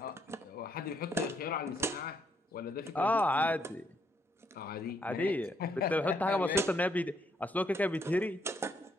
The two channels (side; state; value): both; normal; correlation 0.73